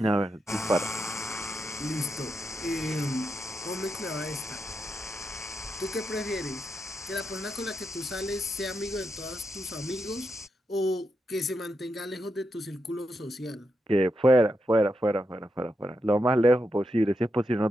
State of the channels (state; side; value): normal; both; correlation 0.85